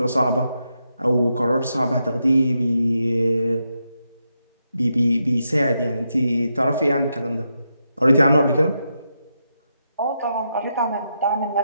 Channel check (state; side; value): inverted; both; correlation -0.84